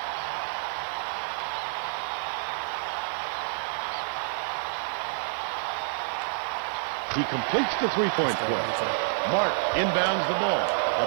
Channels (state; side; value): silent; left; 59 dB below the other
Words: He completes the three-point play. Mark inbounds the ball.